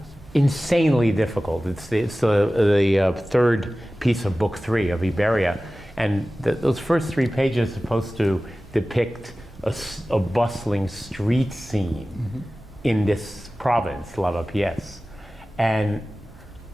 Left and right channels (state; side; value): normal; both; correlation 0.96